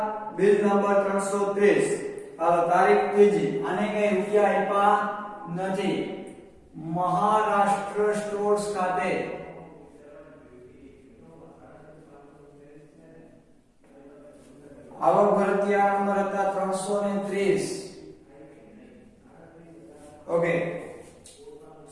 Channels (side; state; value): both; identical; correlation 1.00